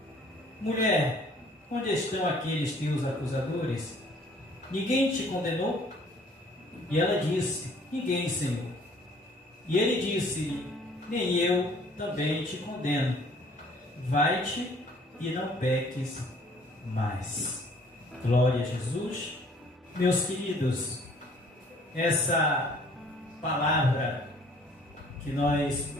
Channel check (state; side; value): normal; both; correlation 0.57